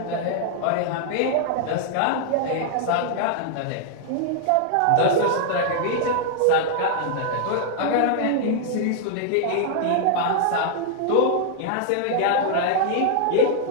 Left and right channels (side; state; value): both; different; correlation -0.01